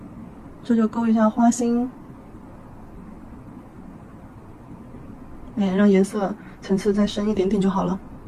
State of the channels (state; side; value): identical; both; correlation 1.00